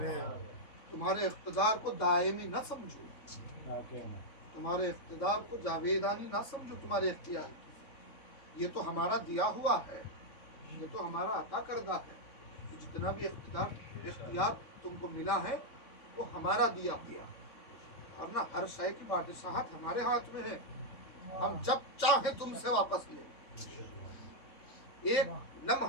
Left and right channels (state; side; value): late; right; 3.6 ms